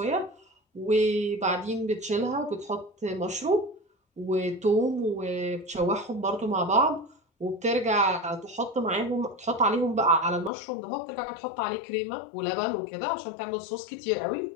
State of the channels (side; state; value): right; drops out; at 10.5 s